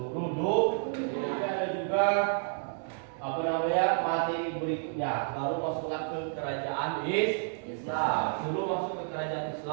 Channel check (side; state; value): left; silent; digital silence